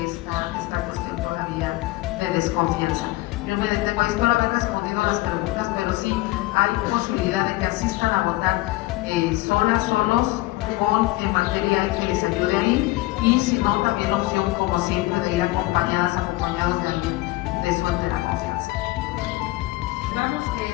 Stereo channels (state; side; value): quieter; right; 19.3 dB